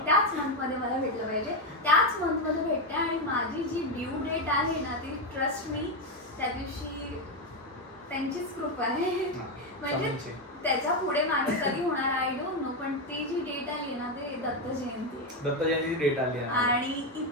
त्याच मंथ मध्ये मला भेटलं पाहिजे त्याच मंथ मध्ये भेटते. आणि माझी जी ड्यू डेट आहे ना ती ट्रस्ट मी त्या दिवशी त्यांचीच कृपा आहे. म्हणजे त्याच्या पुढे माझे कधी होणार आय डोंट नो पण ती जी डेट आली ना ते दत्त जयंती डेट आली आणि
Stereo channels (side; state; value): both; normal; correlation 0.07